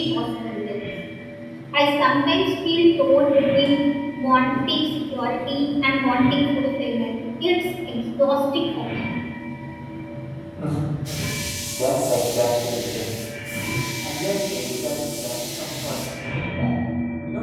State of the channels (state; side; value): identical; both; correlation 1.00